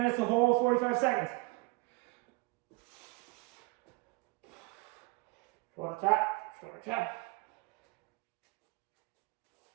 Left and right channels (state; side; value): quieter; left; 25.7 dB